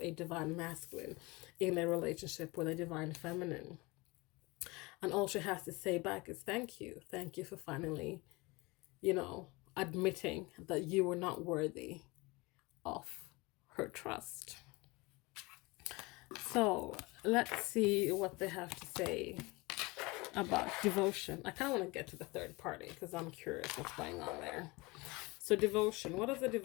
divine masculine in a relationship with a divine feminine. And all she has to say back is thank you. Thank you for finally, admitting that you were not worthy of her trust. So let's see what they have to say about devotion. I kind of want to get to the third party because I'm curious what's going on there. So devotion. What does the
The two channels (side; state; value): right; quieter; 24.5 dB